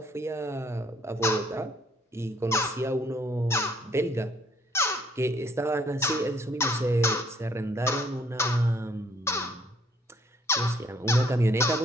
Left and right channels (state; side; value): normal; both; correlation 0.64